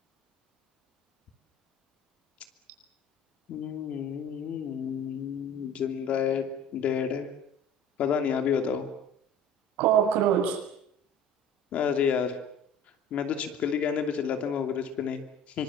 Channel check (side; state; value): both; normal; correlation 0.43